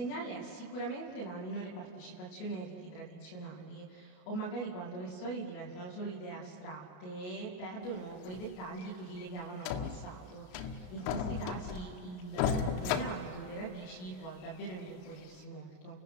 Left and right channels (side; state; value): right; late; 34 ms